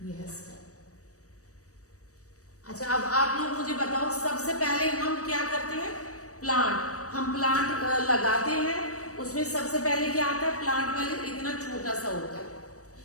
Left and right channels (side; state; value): right; late; 0.66 ms